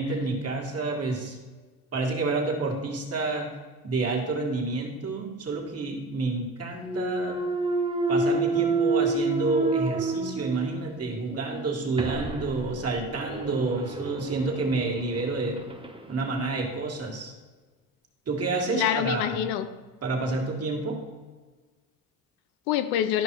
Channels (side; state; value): both; normal; correlation 0.31